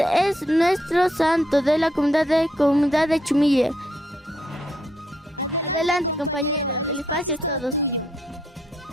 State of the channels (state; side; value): normal; both; correlation 0.75